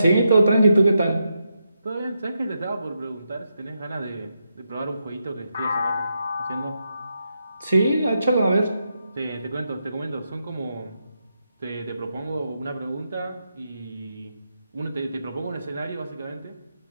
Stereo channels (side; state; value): both; inverted; correlation -0.84